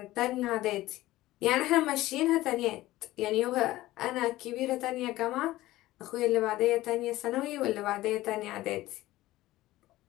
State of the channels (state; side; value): quieter; right; 16.7 dB